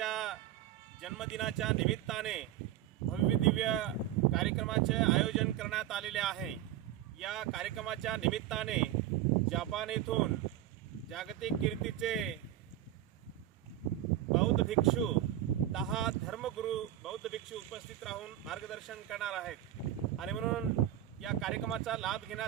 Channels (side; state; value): left; quieter; 12.6 dB